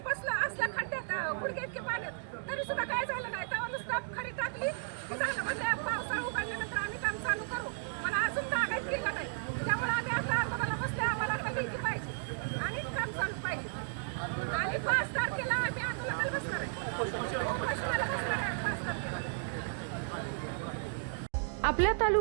बसलो असल्या खड्ड्यात गुडघे इतके पाण्यात तरी सुद्धा काय झालं नाही. तेव्हा नुसतं खडी टाकली की झालं. म्हणजे पावसाळा उघडल्यानंतर आम्ही काम चालू करू पण अजून कागद गेला नाही. त्यामुळे आम्ही आता आंदोलनाला बसले. आम्हाला आता लेखी पाहिजे आणि काम चालू पाहिजे. आणि 5 तारखेला आम्ही आंदोलनाला बसणार आहे. उपोषणाला बसणार आहे 5 तारखेला. आपल्या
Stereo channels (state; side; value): silent; left; digital silence